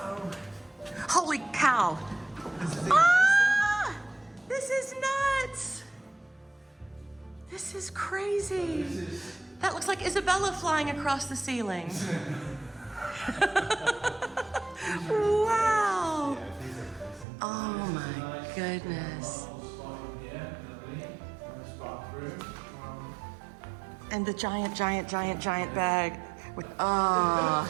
Holy cow. Ah! This is nuts. This is crazy. That looks like Isabella flying across the ceiling. Wow. Oh my goodness. And the giant bag. Oh,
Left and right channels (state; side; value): drops out; left; at 17.2 s